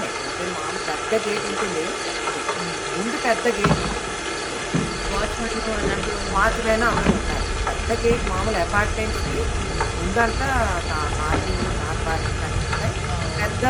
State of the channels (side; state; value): both; identical; correlation 1.00